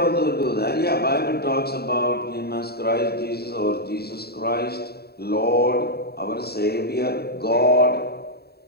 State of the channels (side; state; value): right; late; 0.46 ms